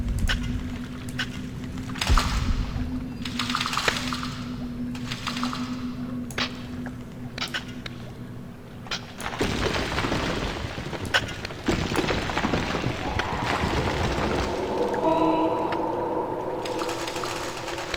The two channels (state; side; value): identical; both; correlation 1.00